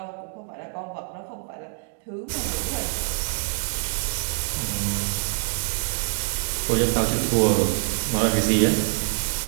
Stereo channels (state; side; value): silent; left; 56 dB below the other